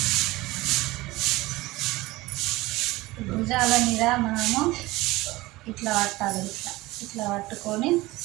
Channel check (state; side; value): quieter; left; 19.9 dB